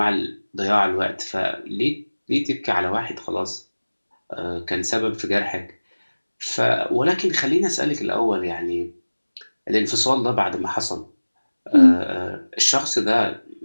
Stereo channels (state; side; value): inverted; both; correlation -1.00